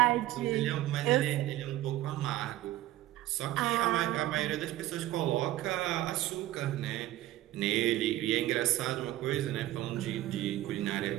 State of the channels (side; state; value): left; quieter; 15.0 dB